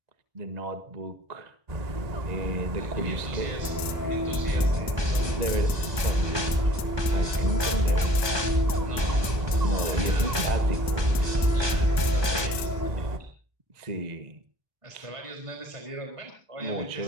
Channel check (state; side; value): late; left; 1.2 ms